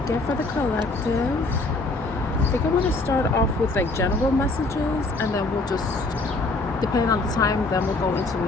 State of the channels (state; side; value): quieter; right; 3.2 dB